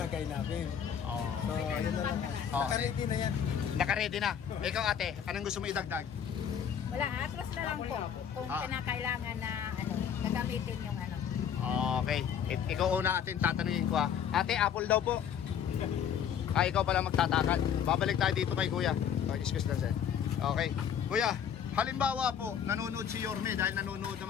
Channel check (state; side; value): quieter; right; 8.4 dB